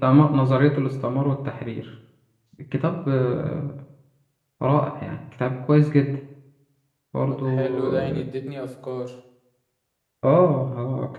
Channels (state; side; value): identical; both; correlation 1.00